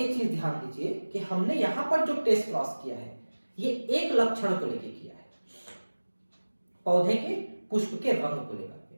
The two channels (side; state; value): both; inverted; correlation -1.00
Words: चीज ध्यान दीजिए कि हमने यहां पर जो टेस्ट क्रॉस किया है ये एक लक्षण को लेकर किया है, पौधे के पुष्प के रंग को लेकर के।